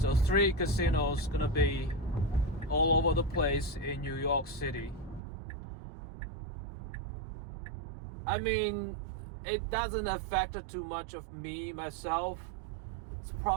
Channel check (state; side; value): drops out; left; at 5.2 s